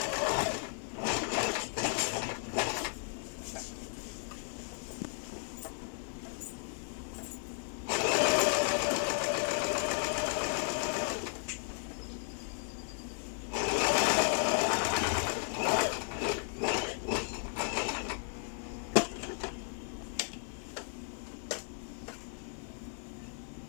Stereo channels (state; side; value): silent; right; 54 dB below the other